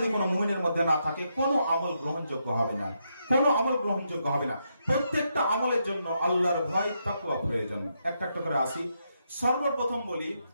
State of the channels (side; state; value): both; inverted; correlation -0.81